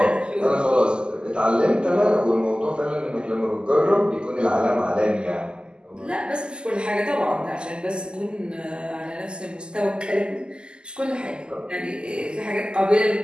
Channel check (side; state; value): left; late; 0.048 ms